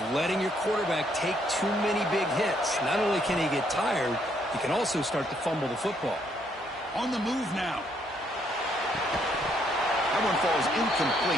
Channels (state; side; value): normal; both; correlation 0.71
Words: letting your quarterback take too many big hits. Not only can he get tired, he can also start to fumble the football. On the move now. That one falls